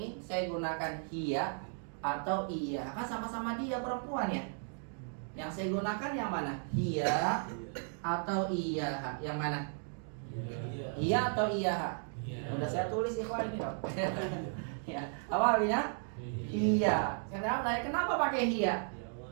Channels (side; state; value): left; silent; 54 dB below the other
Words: saya gunakan hiya atau iya? Kan sama-sama dia perempuan ya. Yang saya gunakan yang mana? Hiya atau iya? Yang mana? Iya atau iya? Udah saya tulis ikhwan ini dong. Ya, awalnya iya. Kenapa pakai hiya?